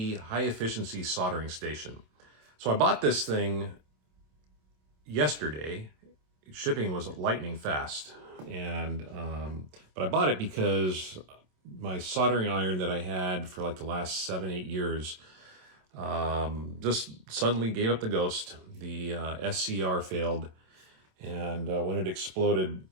High Efficiency Soldering Station. So I bought this thing yesterday. Shipping was lightning fast, and but I bought it because my soldering iron that I had for like the last 7-8 years just suddenly gave up the ghost. The SCR failed. And when it exploded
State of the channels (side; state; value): left; late; 27 ms